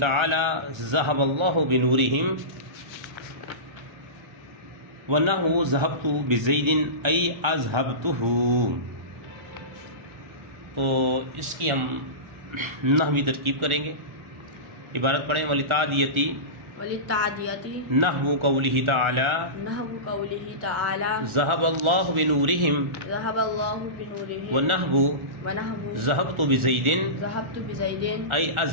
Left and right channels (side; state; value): left; late; 1.4 ms